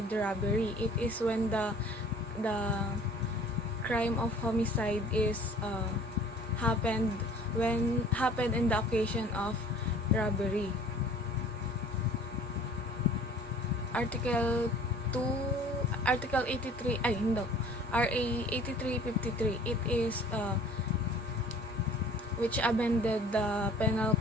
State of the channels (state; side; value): normal; both; correlation 0.50